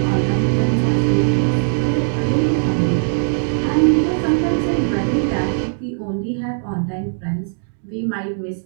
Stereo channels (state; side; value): silent; left; digital silence